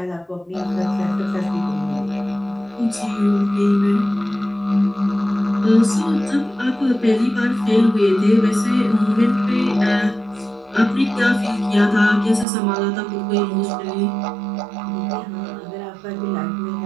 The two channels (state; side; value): drops out; left; at 12.5 s